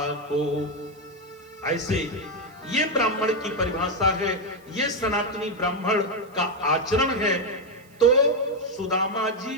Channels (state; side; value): noise; right; hiss, 29 dB below the sound